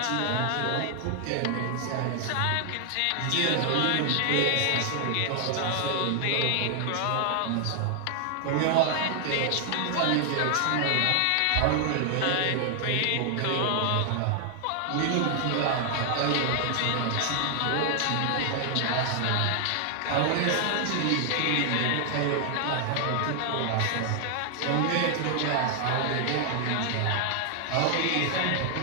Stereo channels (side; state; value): both; different; correlation 0.00